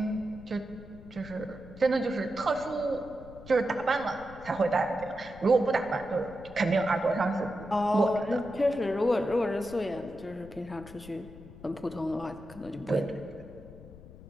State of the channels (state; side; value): noise; left; rumble, 18 dB below the sound